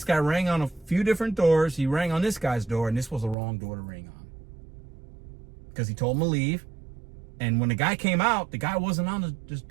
guy rang on a few different doors. He rang on this guy's door, and this was the wrong door to ring on. Because he told him to leave. And when the guy came out, the guy wasn't on his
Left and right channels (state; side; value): drops out; left; at 3.4 s